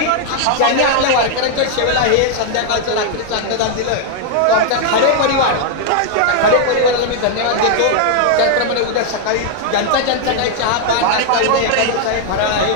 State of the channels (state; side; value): different; both; correlation 0.00